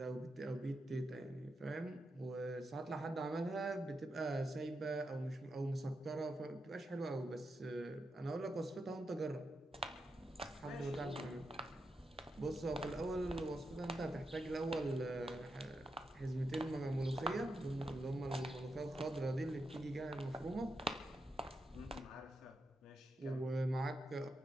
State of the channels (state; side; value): normal; both; correlation 0.86